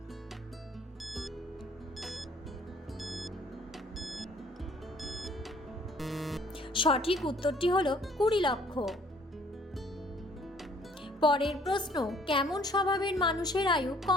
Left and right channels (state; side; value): normal; both; correlation 0.59